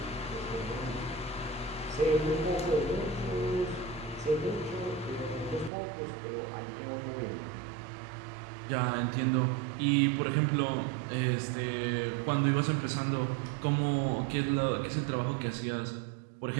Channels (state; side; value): drops out; left; at 5.7 s